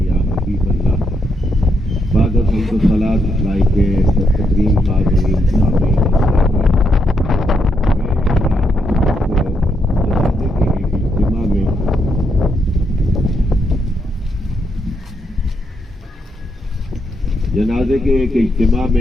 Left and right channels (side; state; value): both; normal; correlation 0.79